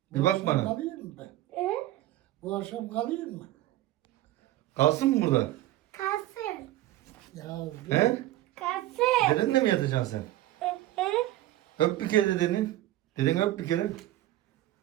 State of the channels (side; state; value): left; quieter; 15.0 dB